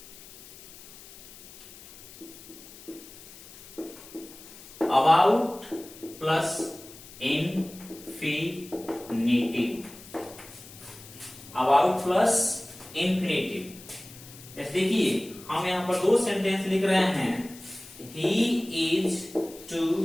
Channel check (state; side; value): noise; left; hiss, 18 dB below the sound